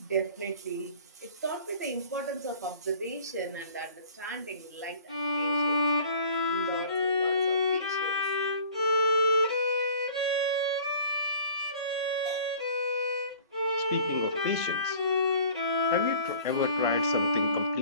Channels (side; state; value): both; inverted; correlation -0.48